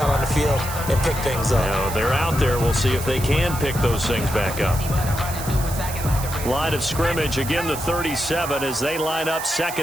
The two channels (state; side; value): noise; right; hiss, 10 dB below the sound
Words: on the field and pick things up. Now, they're out there. We'll see if they can pick those things back up. Line of scrimmage, again the 37 as they line up